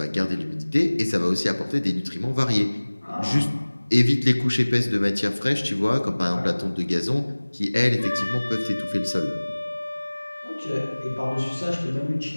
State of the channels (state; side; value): inverted; both; correlation -1.00